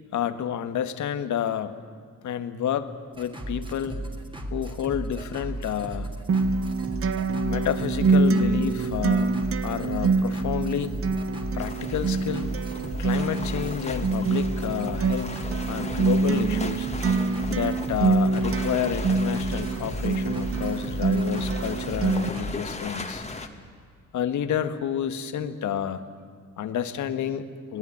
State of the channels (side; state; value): both; normal; correlation 0.41